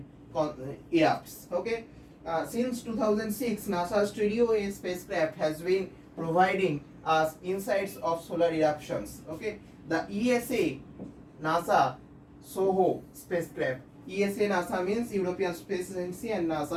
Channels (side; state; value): both; identical; correlation 1.00